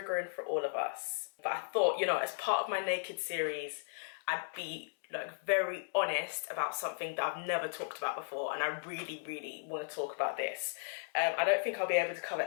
for all of us. But I thought, you know, as part of my naked series, I'd be like very honest about something that I've never talked about before, and I really want to talk about this. I don't think I'll be able to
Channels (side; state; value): right; silent; digital silence